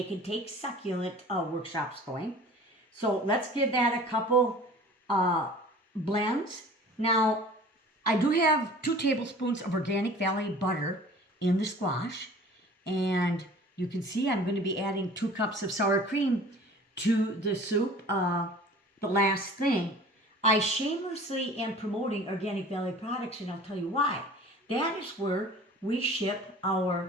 and take succulent workshops going. So let's give that a couple blends. Now, I do have 2 tablespoons of Organic Valley butter in the squash, and you can see I'm going to be adding 2 cups of sour cream to the soup. The last thing, I shamelessly am promoting Organic Valley products, and I'll tell you why. That is where we ship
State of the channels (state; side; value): normal; both; correlation 0.45